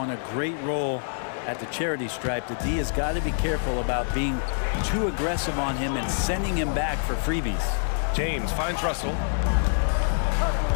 a great role at the charity stripe. The D has got to be careful about being too aggressive on him and sending him back for freebies. James finds Russell.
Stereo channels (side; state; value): right; silent; digital silence